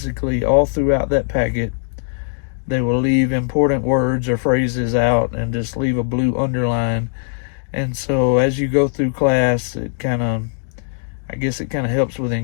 all throughout that packet, they will leave important words or phrases out and just leave a blue underline. And so as you go through class, it kind of helps with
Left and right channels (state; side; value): silent; right; digital silence